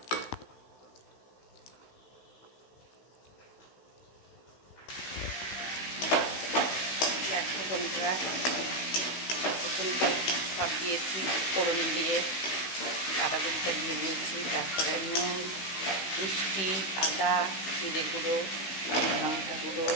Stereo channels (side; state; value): right; late; 16 ms